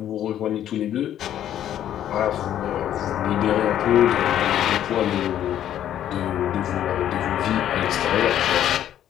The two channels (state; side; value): quieter; right; 11.0 dB